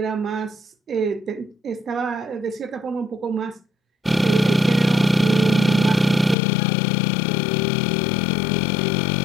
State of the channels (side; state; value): right; drops out; at 6.4 s